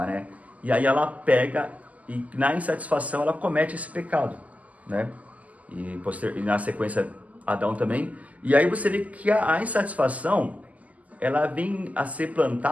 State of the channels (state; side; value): late; left; 0.074 ms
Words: né? E aí ela pega e na insatisfação ela comete esse pecado, né? E na sequência Adão também. E aí você vê que a insatisfação, ela vem a ser